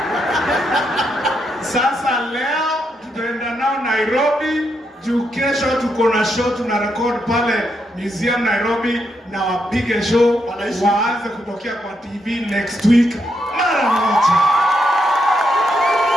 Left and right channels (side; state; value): both; normal; correlation 0.80